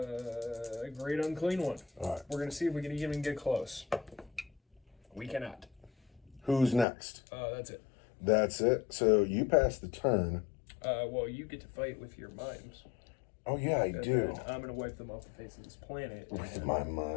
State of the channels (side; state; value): right; drops out; at 6.9 s